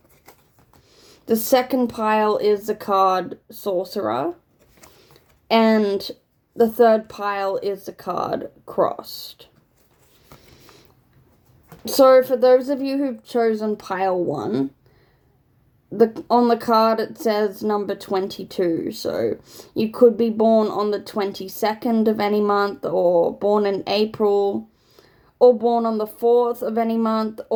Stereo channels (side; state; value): both; identical; correlation 1.00